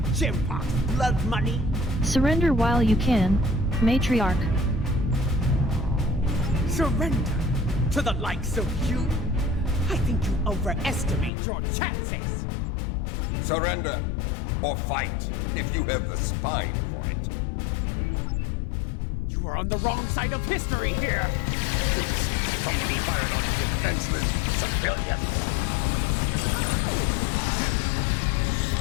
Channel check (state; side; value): drops out; right; at 11.3 s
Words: Jimpok's blood money? Surrender while you can, Matriarch. Surrender to the likes of you? I think you overestimate your chances. Surrender, or fight, if you have the spine for it. You are on the wrong side of history here! Somebody fired on defenseless civilians!